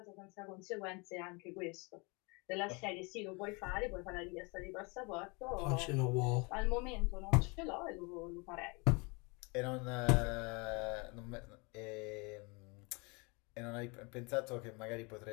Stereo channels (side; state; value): right; quieter; 29.4 dB